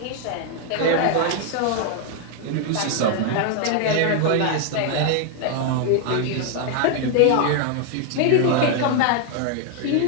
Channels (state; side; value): different; both; correlation 0.01